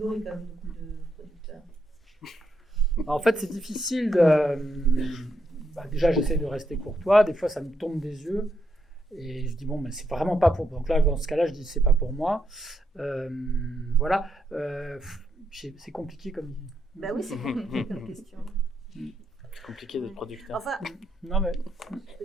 quand même de producteurs. En fait c'est difficile déjà j'essaie de rester courtois, des fois ça me tombe des yeux et je dis bon mais c'est vraiment pas pour, donc là dans ce cas-là je dis c'est pas pour moi. Voilà, c'est compliqué comme. Bah oui, c'est compliqué comme question. C'est compliqué d'être producteur. Enfin, non mais. Je peux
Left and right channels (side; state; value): both; normal; correlation 0.79